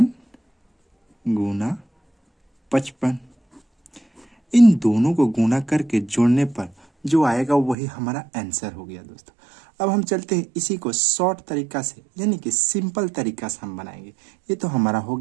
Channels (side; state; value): left; drops out; at 7.8 s